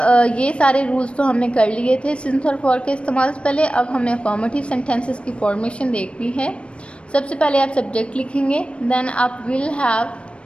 ये सारे रूल्स तो हमने कर लिए थे सिंस और फॉर के इस्तेमाल से पहले। अब हमने अफर्मेटिव सेंटेंसेस की फॉर्मेशन देखनी है। सबसे पहले आप सब्जेक्ट लिखेंगे, देन आप विल हैव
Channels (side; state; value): right; late; 0.059 ms